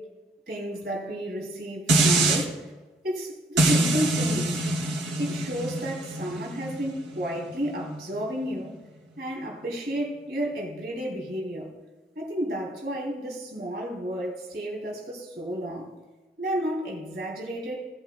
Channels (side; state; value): both; normal; correlation 0.66